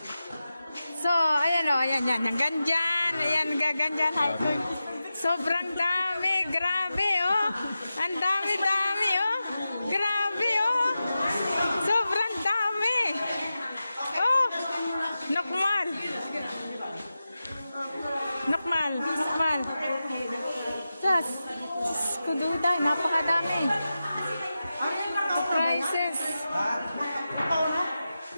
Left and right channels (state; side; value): inverted; both; correlation -0.92